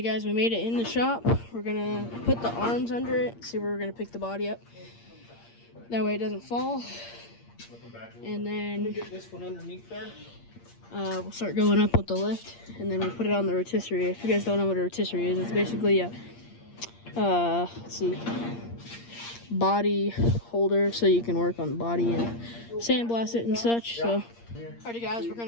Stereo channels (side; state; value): right; late; 8.6 ms